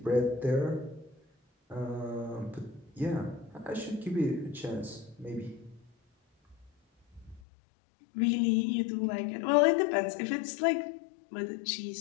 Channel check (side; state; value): right; drops out; at 7.4 s